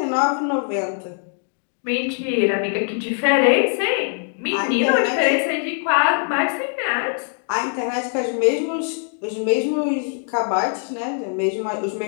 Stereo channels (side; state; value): right; silent; 57 dB below the other